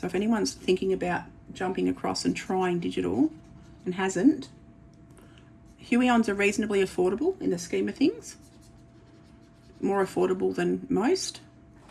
if anyone's thinking about jumping across and trying digital and hasn't, Huey-ons are reasonably affordable in the scheme of things. More affordable than most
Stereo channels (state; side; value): identical; both; correlation 1.00